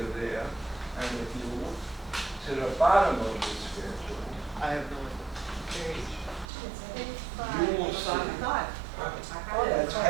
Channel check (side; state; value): left; drops out; at 6.5 s